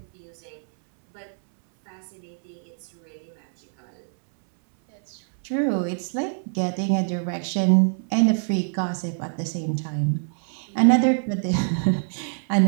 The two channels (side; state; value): left; silent; 62 dB below the other